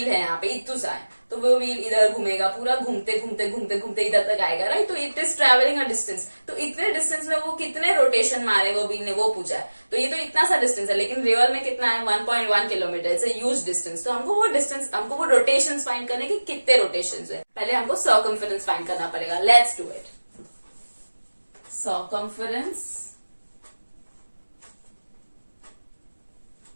है यहाँ पे इतना सा है, तो वो व्हील इधर घूमेगा, पूरा घूमते घूमते घूमते घूमते इधर तक आएगा, राइट। तो it is travelling a distance, तो इतने डिस्टेंस में वो कितने रोटेशन मारे वो व्हील ने, वो पूछा है। तो ये तो इतना सा डिस्टेंस है, लेकिन रियल में कितना है, 1.1 kilometre. It's a huge distance. तो हमको वो डिस्टेंस, हमको वो रोटेशन फाइंड करने की कितने रोटेशन है, पहले हमको सर्कमफेरेंस फाइंड करना पड़ेगा। Let's do it. Circumference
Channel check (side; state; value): both; inverted; correlation -1.00